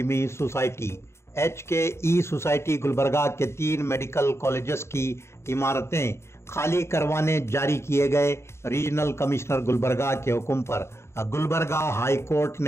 सोसाइटी HKE सोसाइटी गुलबर्गा के 3 मेडिकल कॉलेजेस की इमारतें खाली करवाने जारी किए गए रीजनल कमिश्नर गुलबर्गा के हुक्म पर गुलबर्गा हाई कोर्ट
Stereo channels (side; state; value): right; late; 0.13 ms